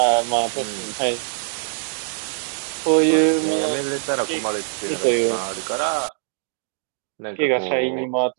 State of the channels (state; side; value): silent; left; digital silence